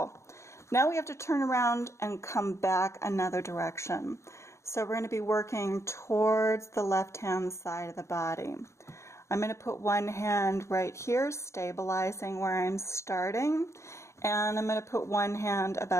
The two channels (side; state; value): right; late; 0.14 ms